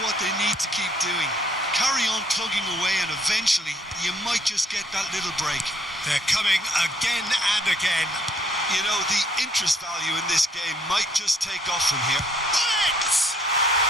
what they need to keep doing. Carry on plugging away and eventually you might just get that little break. They're coming again and again. You know, the interest value in this game might just take off from here. Bullet!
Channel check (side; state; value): both; normal; correlation 0.65